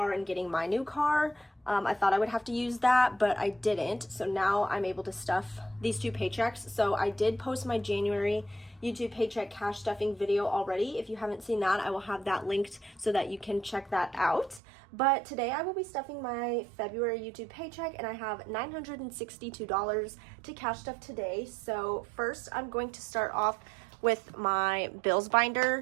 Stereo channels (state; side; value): drops out; left; at 14.6 s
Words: and getting my new car. I thought I would have to use that, but I didn't. So now I'm able to stuff these two paychecks. So I did post my January YouTube paycheck cash stuffing video already. If you haven't seen that, I will have that linked so that you can check that out. But today I will be stuffing my February YouTube paycheck, and I have $962 to cash stuff today. So first I'm going to start off with my bills